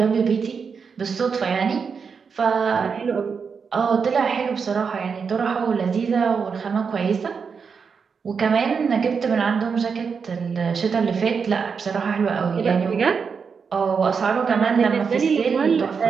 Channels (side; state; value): left; quieter; 5.8 dB